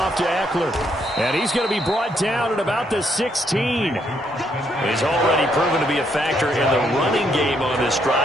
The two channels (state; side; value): normal; both; correlation 0.73